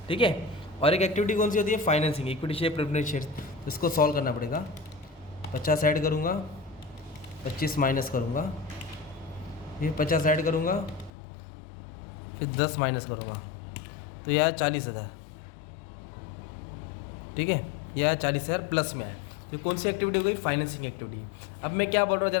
ठीक है। और एक एक्टिविटी कौन सी होती है, financing, equity share preference share, तो इसको सॉल्व करना पड़ेगा। 50 ऐड करूँगा, 25 माइनस करूँगा, फिर 50 ऐड करूँगा, फिर 10 माइनस करूँगा, तो यह 40,000, ठीक है। यह 40,000 प्लस में है। तो कौन सी एक्टिविटी हो गई, फाइनेंसिंग एक्टिविटी। अब मैं क्या बोल रहा हूँ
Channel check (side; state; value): right; drops out; at 11.1 s